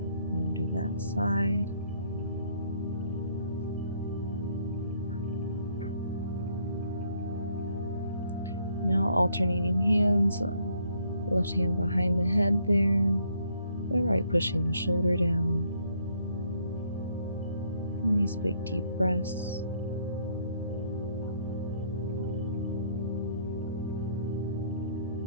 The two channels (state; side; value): inverted; both; correlation -0.67